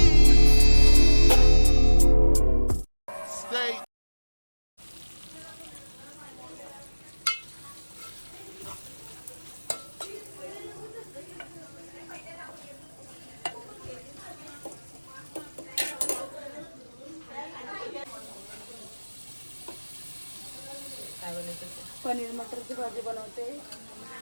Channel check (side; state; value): both; inverted; correlation -1.00